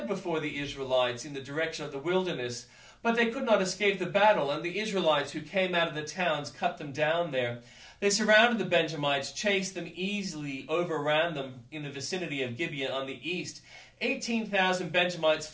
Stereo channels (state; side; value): identical; both; correlation 1.00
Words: before the Israelites in the direction of the wilderness. But they could not escape the battle, and the Israelites who came out of the towns cut them down there. They surrounded the Benjamites, chased them easily, overran them in the vicinity of Gibeah on the east. 18,000 Benjamites